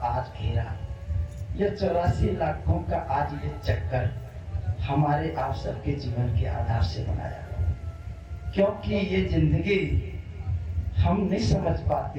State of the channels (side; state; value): both; identical; correlation 1.00